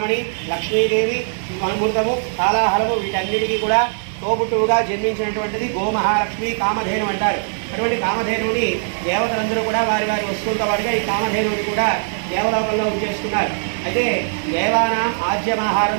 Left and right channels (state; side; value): silent; left; digital silence